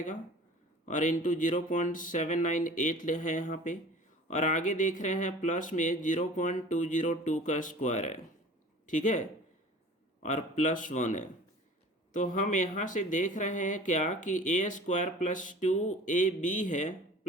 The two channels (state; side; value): normal; both; correlation 0.44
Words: और इंटू 0.798 है यहाँ पे, और आगे देख रहे हैं प्लस में 0.202 का स्क्वायर है, ठीक है, और +1 है। तो हम यहाँ से देख रहे हैं क्या कि ए स्क्वायर प्लस 2ab है